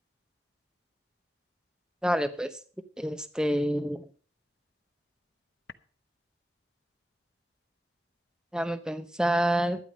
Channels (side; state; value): both; normal; correlation 0.93